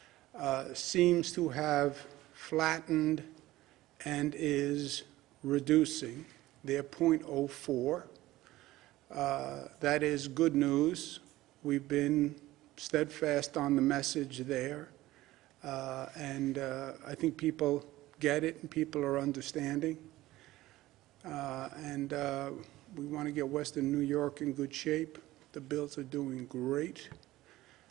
seems to have flattened and is reducing. They're 0.04. That is good news. We've been steadfast on the message there. And I think people get it and people are understanding. And we want to get Western New York in good shape. The Bills are doing great.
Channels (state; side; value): quieter; left; 16.8 dB